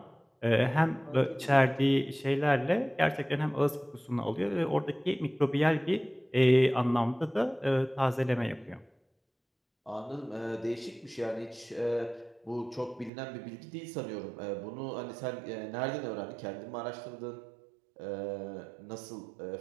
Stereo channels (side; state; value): left; drops out; at 13.1 s